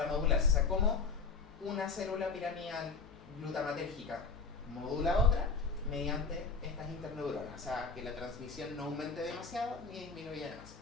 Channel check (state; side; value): quieter; right; 4.6 dB